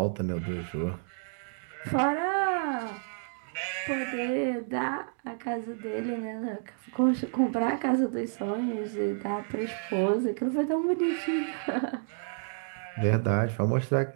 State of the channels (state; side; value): silent; left; 58 dB below the other